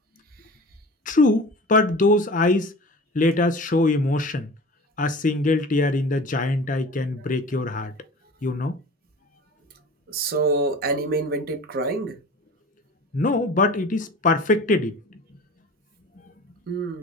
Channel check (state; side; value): normal; both; correlation 0.39